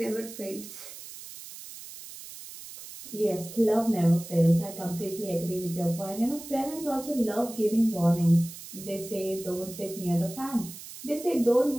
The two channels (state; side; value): noise; right; hiss, 14 dB below the sound